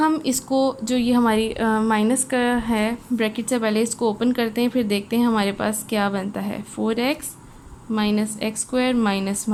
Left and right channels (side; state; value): both; identical; correlation 1.00